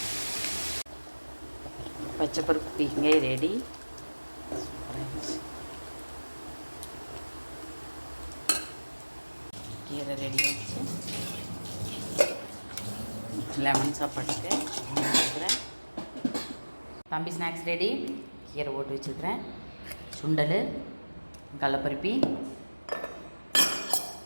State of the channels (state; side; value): inverted; both; correlation -1.00